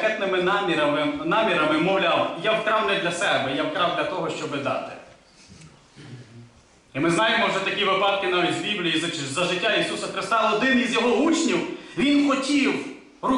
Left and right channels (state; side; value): identical; both; correlation 1.00